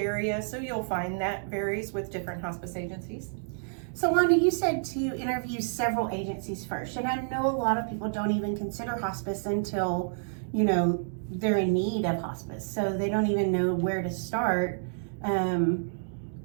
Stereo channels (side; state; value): left; silent; digital silence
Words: so you'll find that varies with different hospice agencies. So Wanda, you said to interview several agencies first, and I know a lot of people don't even consider hospice until, they're in need of hospice, so they don't even know where to start.